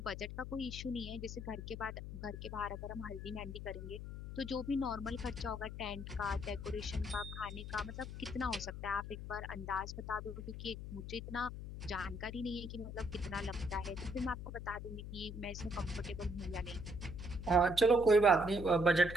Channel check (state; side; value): noise; left; hum, 8 dB below the sound